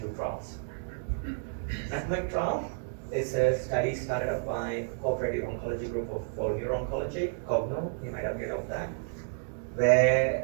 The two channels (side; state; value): left; silent; digital silence